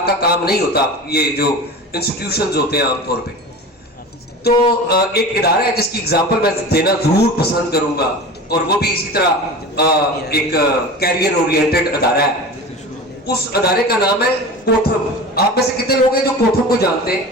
کا کام نہیں ہوتا, یہ جو انسٹیٹیوشنز ہوتے ہیں عام طور پہ. تو ایک ادارہ ہے جس کی اگزامپل میں دینا ضرور پسند کروں گا, اور وہ بھی اسی طرح ایک کیریئر اورینٹڈ ادارہ ہے. اس ادارے کا نام ہے کوتھم. آپ میں سے کتنے لوگ ہیں جو کوتھم کو جانتے ہیں؟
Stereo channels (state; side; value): normal; both; correlation 0.33